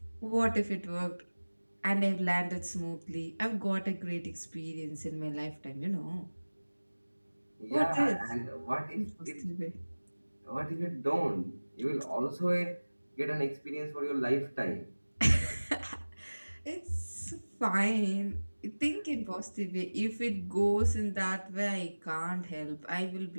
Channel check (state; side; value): inverted; both; correlation -1.00